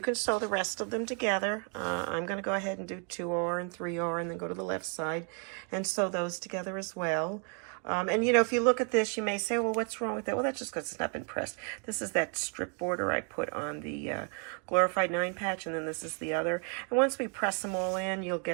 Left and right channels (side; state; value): left; quieter; 39.6 dB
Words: can sew the rest of them together. I'm going to go ahead and do 2R and 3R and then go to the left side and sew those together as well. And you know, if you look at this, you may say, well, what's wrong with that? Well, that's just because it's not been pressed. This is that strip border I put on the Glorified 9 patch, and then this is the other. And once we press them all in, you'll